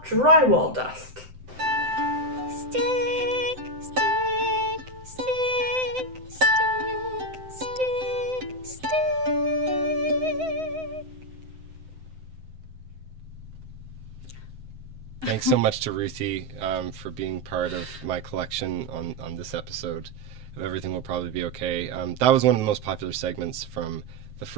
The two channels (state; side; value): late; left; 7.8 ms